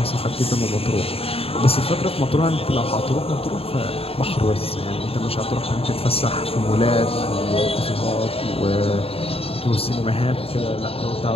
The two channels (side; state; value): right; late; 0.28 ms